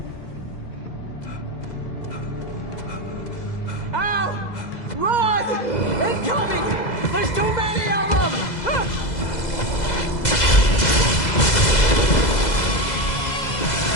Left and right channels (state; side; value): late; right; 2.0 ms